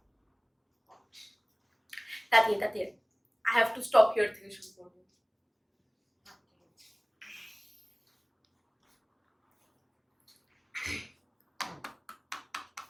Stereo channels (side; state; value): both; identical; correlation 1.00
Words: তাতিয়ে I have to stop here থেকে শুরু করবো